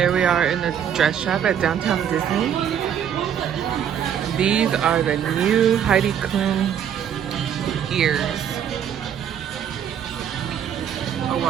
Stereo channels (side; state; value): left; quieter; 9.0 dB